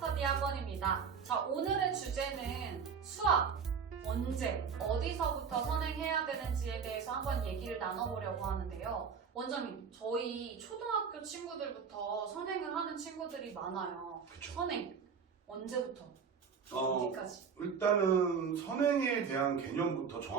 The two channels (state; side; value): quieter; left; 6.3 dB